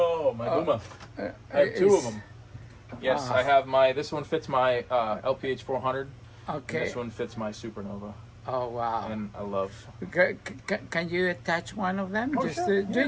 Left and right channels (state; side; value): identical; both; correlation 1.00